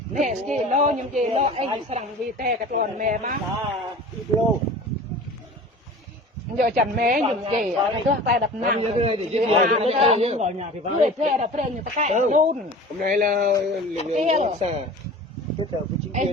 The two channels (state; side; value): normal; both; correlation 0.39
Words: nè gì lo nhưng gì lo anh sang vì thế cái con mẹ má giờ chẳng mẹ nhưng gì cái con phải đập nàng vui thế đập thế như cái luôn hôm nay là lực lượng xã kết hợp với chính